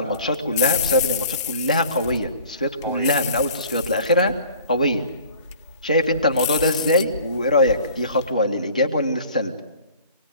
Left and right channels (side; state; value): both; inverted; correlation -0.48